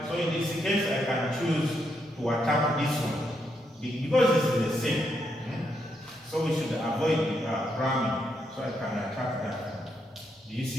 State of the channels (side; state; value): both; normal; correlation 0.79